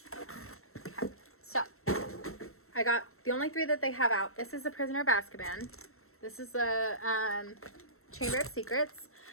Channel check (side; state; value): right; late; 0.63 ms